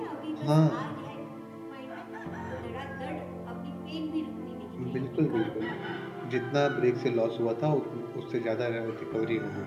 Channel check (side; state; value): both; identical; correlation 1.00